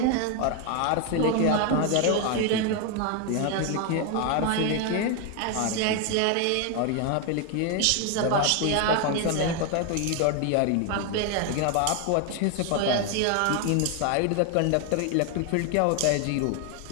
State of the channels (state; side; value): different; both; correlation 0.01